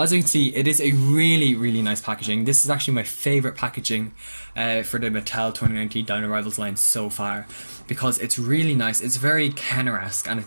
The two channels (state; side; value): inverted; both; correlation -1.00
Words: as you can see, it is a really nice packaging. This is actually my favourite packaging for the Mattel 2019 Dino Rivals line so far, because it's really nice. It's very Kenner-esque and